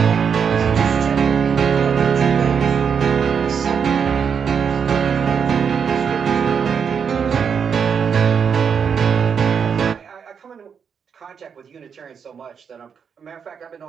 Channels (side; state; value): left; quieter; 6.8 dB